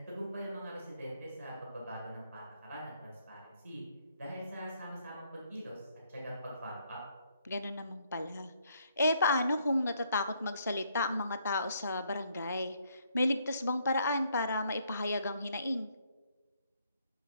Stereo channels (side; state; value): both; inverted; correlation -0.70